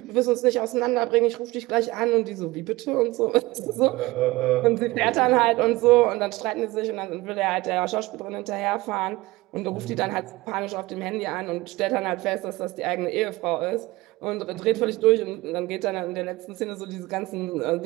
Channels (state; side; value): quieter; left; 20.3 dB